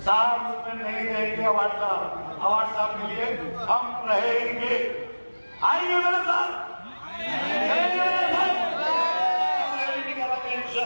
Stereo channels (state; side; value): inverted; both; correlation -1.00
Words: साहब उसमें नहीं रहेंगे, अवार्ड साहब के लिए हम रहेंगे। आएंगे मेरे साथ, रैली निकालेंगे